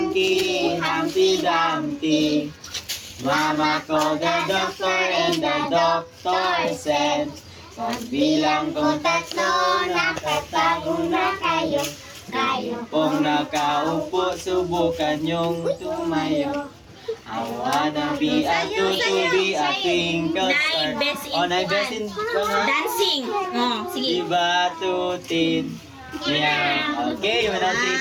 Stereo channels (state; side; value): identical; both; correlation 1.00